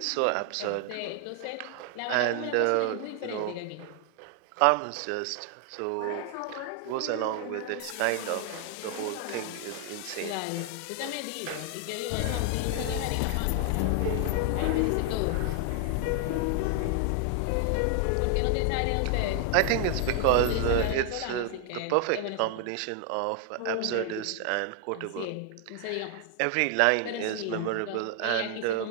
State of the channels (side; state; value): both; different; correlation 0.00